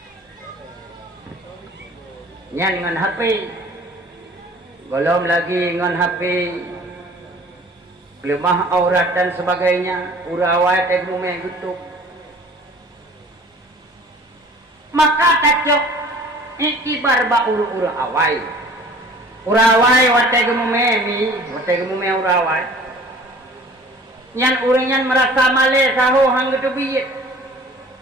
Nyan dengan HP. Belum lagi dengan HP. Lemah aurat dan sebagainya. Urawai tegume gitu. Maka tacok ikibar ba uru-uru awai. Urawai wategume mi, wategume urawai. Nyan uringan merasa male saho hang gitu biyet.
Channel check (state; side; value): normal; both; correlation 0.48